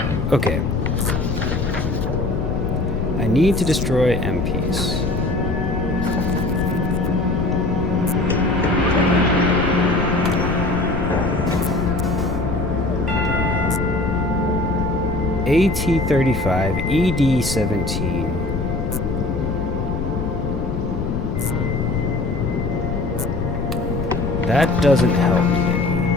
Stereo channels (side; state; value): left; noise; rumble, 3 dB below the sound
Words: Okay. I need to destroy MPs. AT-35, ED-17. That doesn't help me any.